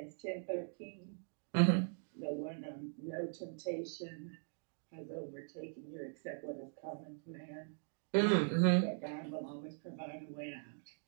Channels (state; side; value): silent; left; digital silence